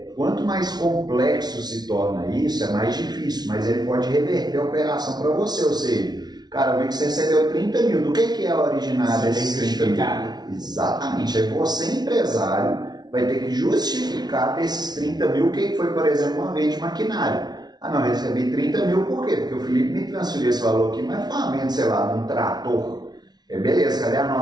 quanto mais complexo se torna isso, é mais difícil, mas ele pode reverter a operação para você, ou seja, cara, eu vi que você recebeu 30 mil, do que é a originária desses 30 mil? Exatamente, aí você, empresário, vai ter que justificar desses 30 mil o que foi, por exemplo, uma venda de maquinário. Ah não, eu recebi 30 mil, por quê? Porque o Felipe me transferiu esse valor aqui, mas foi uma venda, sei lá, de um trator. Beleza, cadê a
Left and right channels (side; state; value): left; late; 0.19 ms